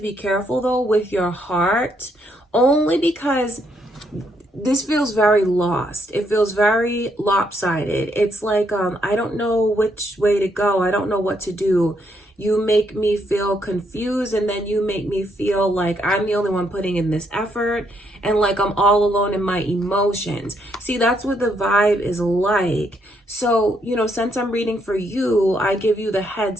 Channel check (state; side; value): normal; both; correlation 0.74